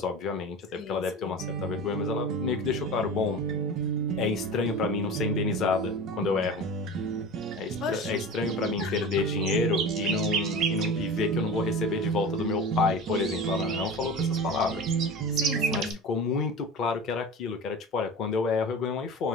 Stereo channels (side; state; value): both; normal; correlation 0.33